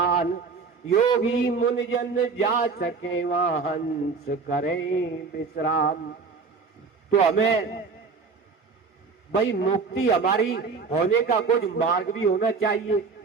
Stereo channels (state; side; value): quieter; left; 4.8 dB